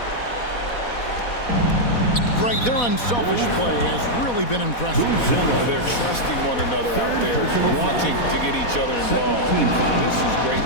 Greg, their unselfish play has really been impressive. They're trusting one another out there, wanting to get each other involved. This is great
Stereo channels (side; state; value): right; late; 4.1 ms